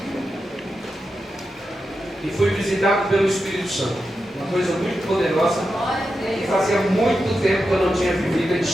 e fui visitado pelo Espírito Santo, uma coisa muito poderosa, que fazia muito tempo que eu não tinha vivido em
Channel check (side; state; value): both; normal; correlation 0.89